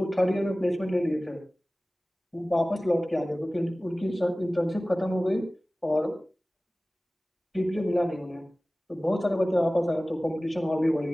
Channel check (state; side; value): normal; both; correlation 0.98